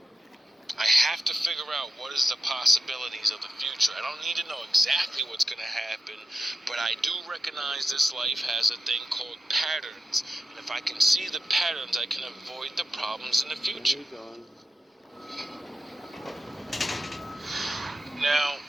I have to figure out what is the possibilities of the future. I don't need to know exactly what's going to happen, but I do recognize this life has a thing called patterns. And if I can see the patterns, I can avoid the problems in the future. Now,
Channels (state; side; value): normal; both; correlation 0.90